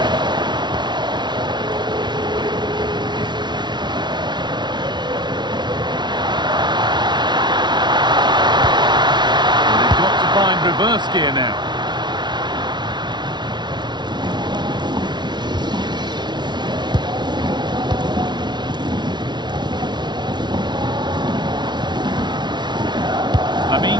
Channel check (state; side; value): late; left; 0.21 ms